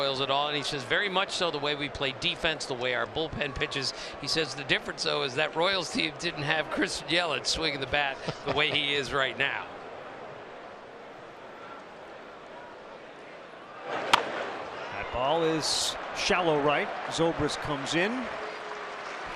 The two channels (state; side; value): identical; both; correlation 1.00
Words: at all, and he says very much so, the way we play defense, the way our bullpen pitches. He says the difference, though, is that Royals team didn't have Christian Yelich swinging the bat the way he is right now. That ball is shallow right. Zobrist comes in,